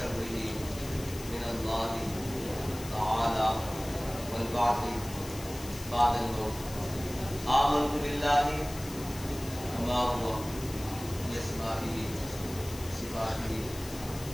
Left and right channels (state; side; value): noise; left; hiss, 14 dB below the sound